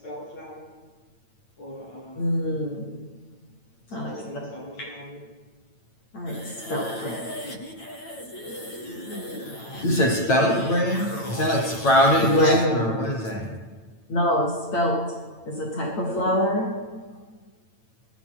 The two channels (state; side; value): late; right; 8.9 ms